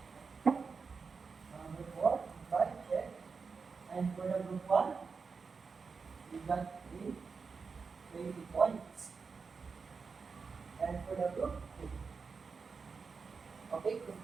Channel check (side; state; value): left; quieter; 5.0 dB